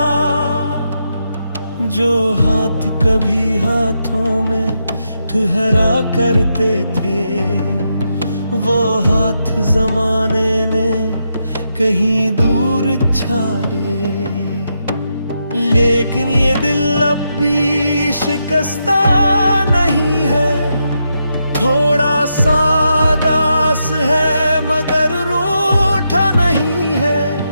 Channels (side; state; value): both; inverted; correlation -0.83